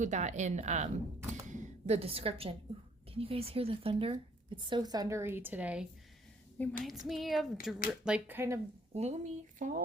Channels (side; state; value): both; normal; correlation 0.63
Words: that in the description. Ooh, can you guys hear the thunder? It's so thundery today. Reminds me of like kind of gloomy